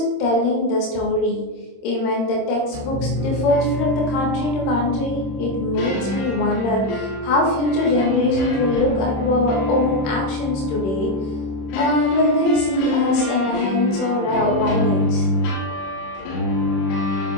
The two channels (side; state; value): right; late; 26 ms